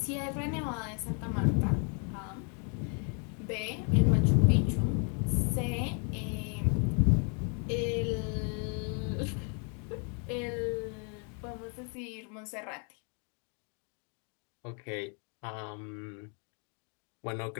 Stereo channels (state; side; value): quieter; right; 39.0 dB